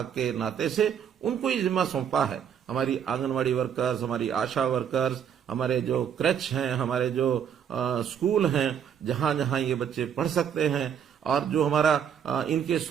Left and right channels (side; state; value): left; quieter; 8.3 dB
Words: के नाते से उनको ही जिम्मा सौंपा है। हमारी आंगनवाड़ी वर्कर्स, हमारी आशा वर्कर्स, हमारे जो क्रैच हैं, हमारे जो स्कूल हैं, जहां जहां ये बच्चे पढ़ सकते हैं, और जो हमारा इनके